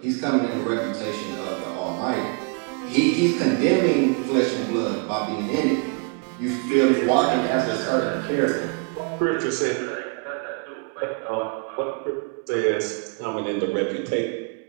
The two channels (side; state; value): left; quieter; 34.3 dB